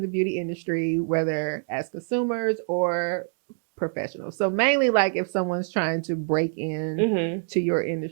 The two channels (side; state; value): left; silent; digital silence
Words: the beauty industry, whether as consumers or professionals? So mainly like if someone's trying to break in to your